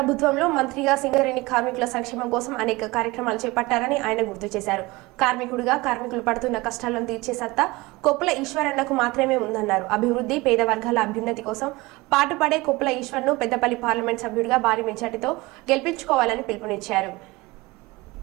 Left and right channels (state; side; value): quieter; left; 22.0 dB